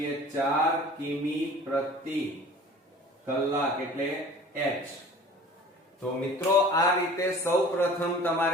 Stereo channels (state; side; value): normal; both; correlation 0.45